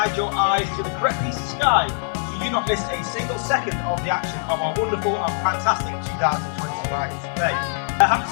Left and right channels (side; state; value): right; silent; digital silence